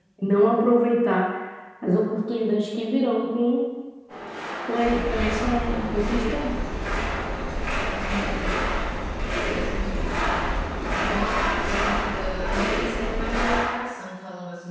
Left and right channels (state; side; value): identical; both; correlation 1.00